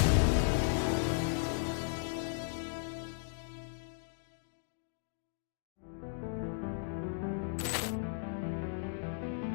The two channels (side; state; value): right; silent; digital silence